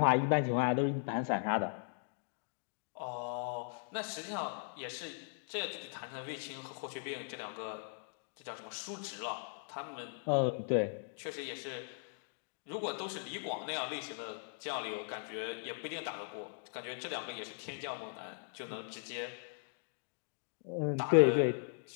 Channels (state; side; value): silent; right; digital silence